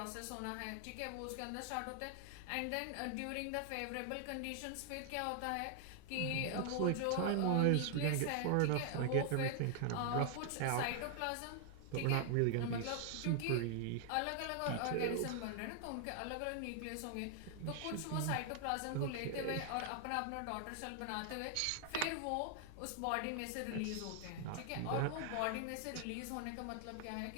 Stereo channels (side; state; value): both; different; correlation 0.00